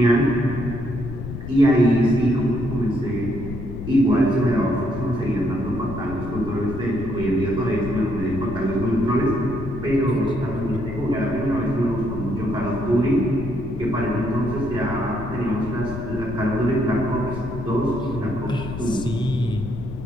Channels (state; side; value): noise; left; rumble, 8 dB below the sound